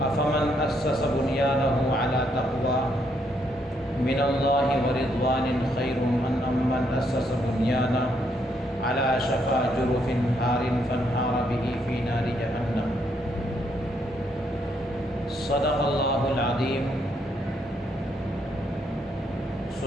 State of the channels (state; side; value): normal; both; correlation 0.74